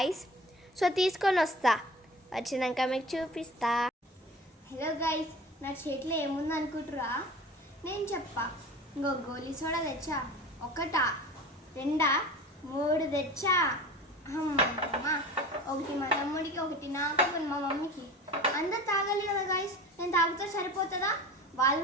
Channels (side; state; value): both; normal; correlation 0.37